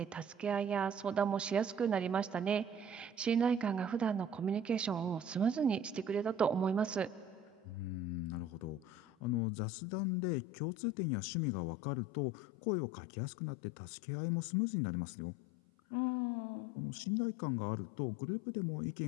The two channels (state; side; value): drops out; right; at 9.4 s